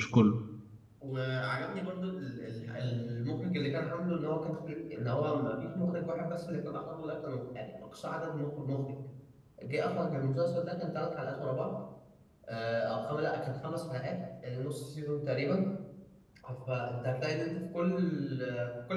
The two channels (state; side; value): identical; both; correlation 1.00